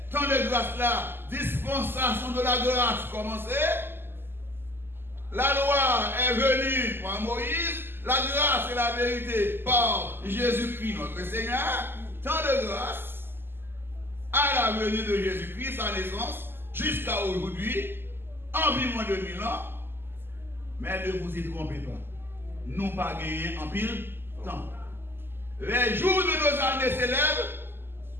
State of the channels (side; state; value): left; late; 0.10 ms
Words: tant de grâce là, dispensation de la grâce commencé. La loi est venue par Moïse, la grâce et la vérité par Jésus-Christ notre Seigneur. Tant de grâce à la venue de Jésus-Christ, sa naissance, jusqu'à aujourd'hui, environ 2000 ans. Mais ne vous y trompez pas. Nous pas gagné en pile temps. Les jours de nos années s'élèvent